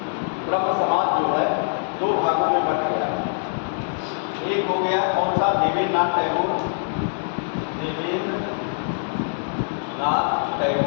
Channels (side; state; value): right; silent; digital silence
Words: जो है दो भागों में बट गया है। एक हो गया कौन सा, देवेंद्रनाथ टैगोर, देवेंद्रनाथ